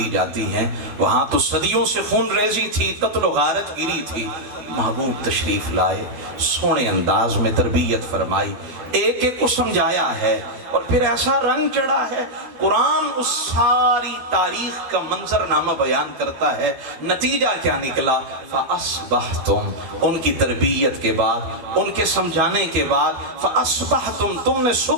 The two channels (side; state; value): left; late; 12 ms